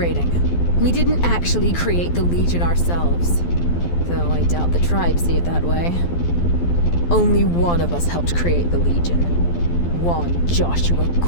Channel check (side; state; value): right; late; 12 ms